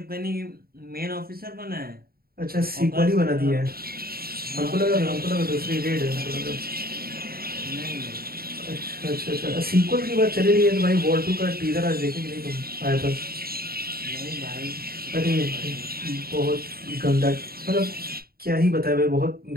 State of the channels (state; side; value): late; left; 0.44 ms